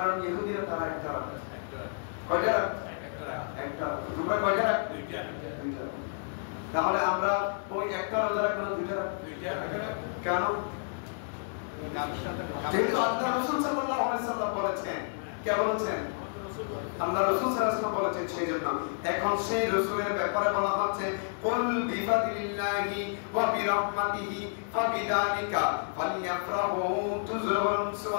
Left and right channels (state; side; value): silent; right; 58 dB below the other